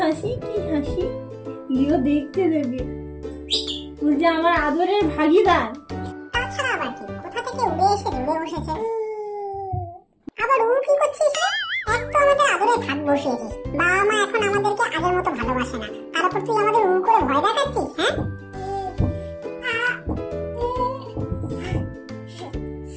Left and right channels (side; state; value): both; identical; correlation 1.00